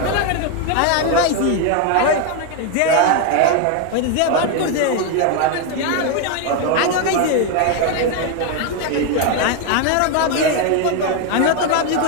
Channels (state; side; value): different; both; correlation 0.01